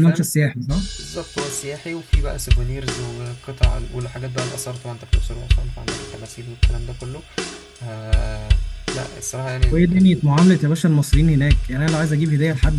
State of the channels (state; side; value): identical; both; correlation 1.00